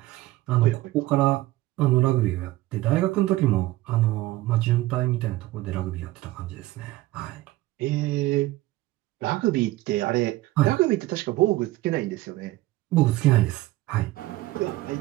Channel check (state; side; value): quieter; left; 17.5 dB